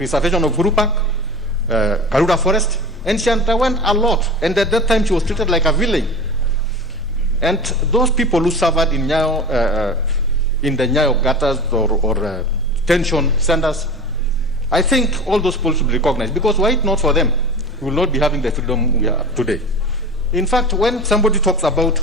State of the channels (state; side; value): normal; both; correlation 0.33